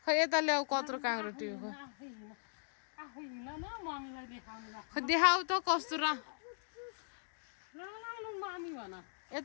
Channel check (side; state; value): right; silent; digital silence